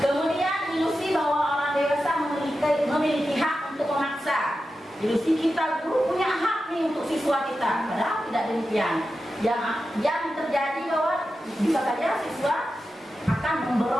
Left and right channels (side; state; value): both; normal; correlation 0.91